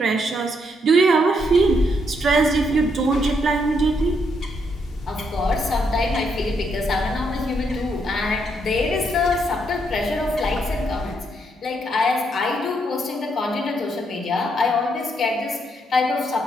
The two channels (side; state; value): both; normal; correlation 0.75